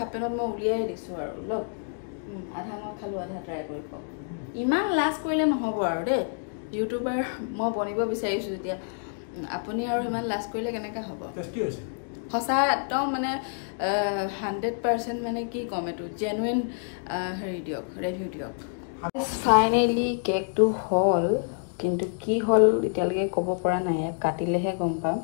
পেণ্টত মই উলিয়াই দিছোঁ আৰু লওক আধা মই খালোঁ আধা ট্ৰাই কৰি পাওঁ ইমান লাজ কৰিলে নহ'ব আৰু দেই ইউটিউবাৰ মই বনিব বিচাৰিছোঁ যেতিয়া আপুনি আৰু ইমান লাজ কৰিলে কেনেকৈ হ'ব সঁচা একদম মানে 100% মানে কি ক'ম এইটো জেনুইন হেৰি দিয়ক ৰিভিউ দিয়ক ফাইনেলি কেকটো হ'ল কিন্তু কি হ'ল এতিয়ালৈকে ক'ব পৰা নাই ইয়াক কাটিলেহে গম পাম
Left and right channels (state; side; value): silent; right; digital silence